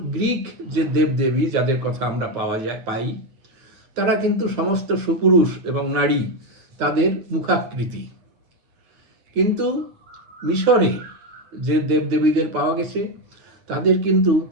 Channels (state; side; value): late; left; 8.8 ms